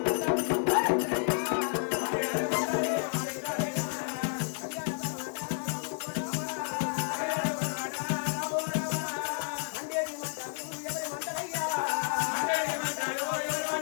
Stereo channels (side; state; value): right; silent; digital silence